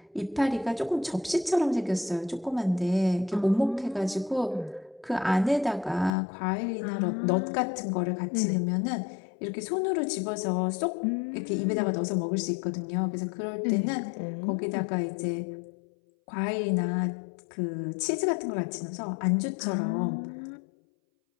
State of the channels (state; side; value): drops out; right; at 6.1 s